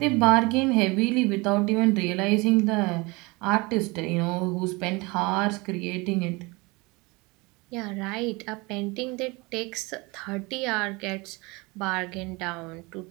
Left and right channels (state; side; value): quieter; left; 25.5 dB